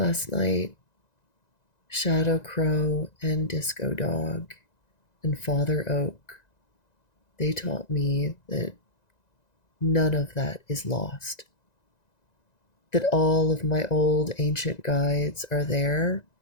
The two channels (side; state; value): right; late; 1.9 ms